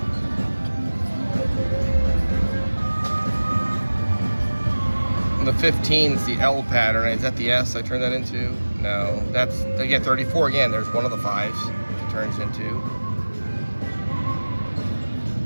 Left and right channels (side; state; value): both; inverted; correlation -1.00